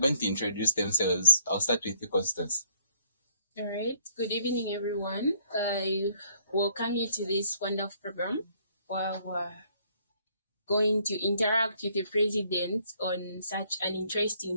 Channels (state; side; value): inverted; both; correlation -0.66